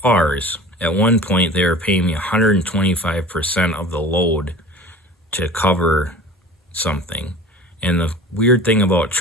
At one point, they were paying me 125% of the load to cover something. And the weird thing about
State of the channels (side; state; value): both; normal; correlation 0.40